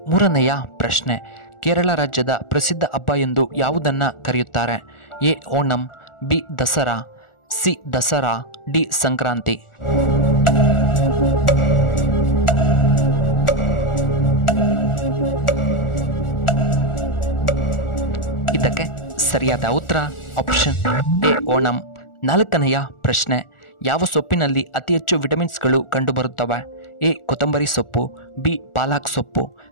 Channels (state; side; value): late; right; 1.4 ms